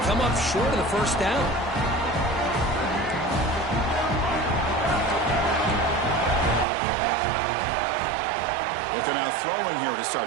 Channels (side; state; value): left; drops out; at 6.7 s